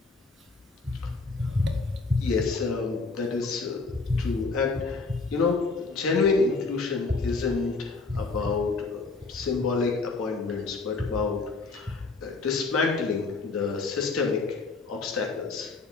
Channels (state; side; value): quieter; right; 3.9 dB